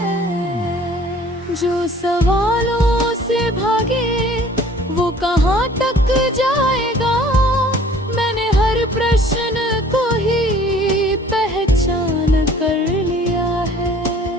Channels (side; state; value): both; normal; correlation 0.52